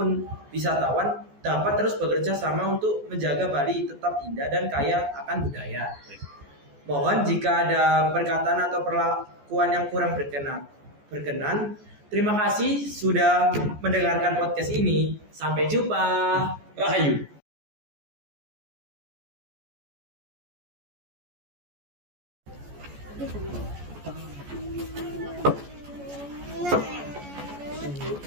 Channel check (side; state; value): left; late; 14 ms